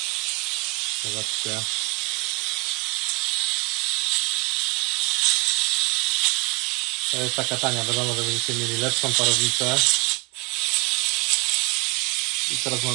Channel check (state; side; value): quieter; left; 28.5 dB